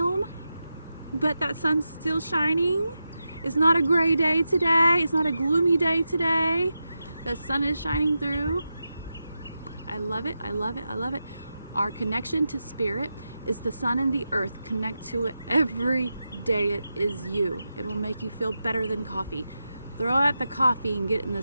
but that sun's still shining. It's not a gray day today. It's not a gloomy day today. The sun is shining through. I love it. I love it. I love it. Our connection to spirit is the sun and the earth. Connect to it every day. It is you. It will make you feel better than coffee. Throw out the coffee and get in the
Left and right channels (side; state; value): both; inverted; correlation -0.89